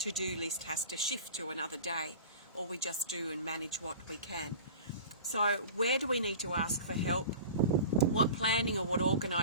list has to shift to another day, or we just do and manage what we can. So where do we need to ask for help? What planning or what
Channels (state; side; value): inverted; both; correlation -0.37